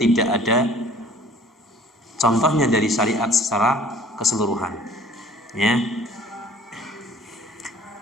ada contohnya dari syariat secara keseluruhan. Ya.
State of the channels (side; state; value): both; normal; correlation 0.51